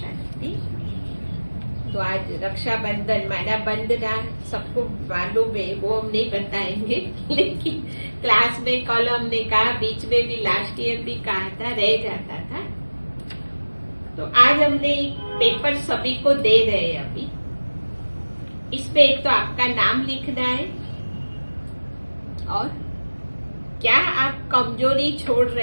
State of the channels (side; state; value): both; inverted; correlation -1.00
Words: तो आज रक्षाबंधन माना बंधना सबको मालूम है, वो हम नहीं बताएंगे, लेकिन क्लास में कल हमने कहा, बीच में भी लास्ट ईयर भी कहा था, रह जाता था। तो आज हमने पेपर सभी को दे रहे हैं। अभी इसमें एक तो आपका नाम लिखना है और क्या आप कमजोरी छोड़